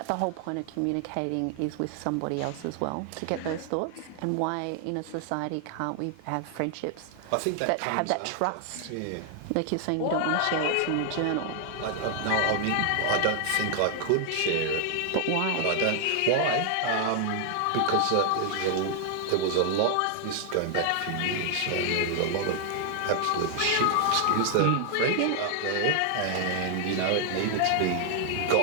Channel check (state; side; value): different; both; correlation 0.00